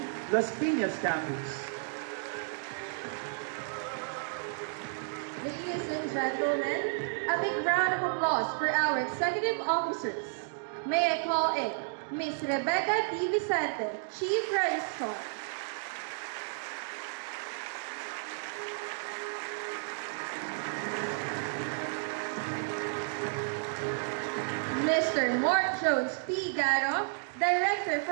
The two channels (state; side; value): silent; left; digital silence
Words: Las Piñas Campus. Ladies and gentlemen, a big round of applause for our executive officers. May I call in Ms. Rebecca D. Vicente, Chief Registrar. Mr. Mort Jones P. Garo, Director